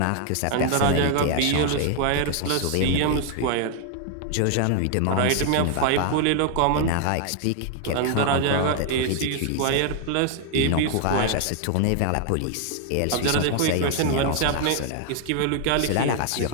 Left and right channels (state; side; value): different; both; correlation 0.00